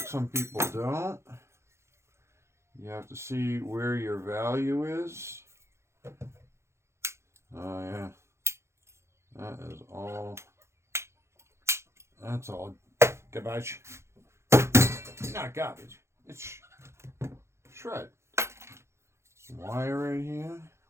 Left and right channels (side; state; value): left; late; 0.13 ms